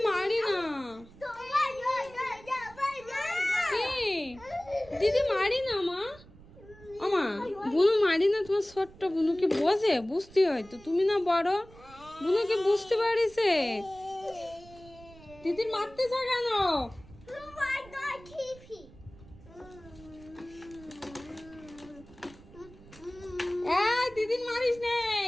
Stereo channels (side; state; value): right; noise; rumble, 21 dB below the sound